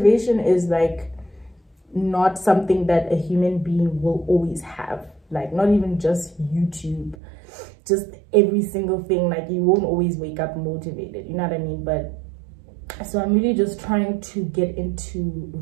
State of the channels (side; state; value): left; drops out; at 7.2 s